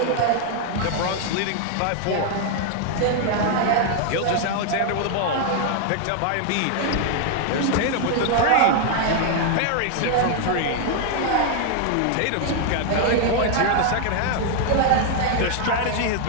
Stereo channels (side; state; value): both; different; correlation 0.00